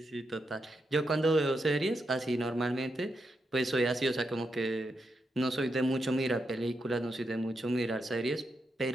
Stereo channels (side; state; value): both; normal; correlation 0.84